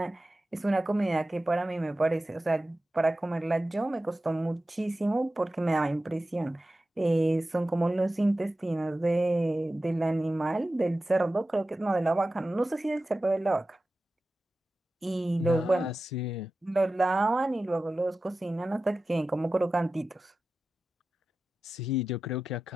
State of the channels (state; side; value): normal; both; correlation 0.94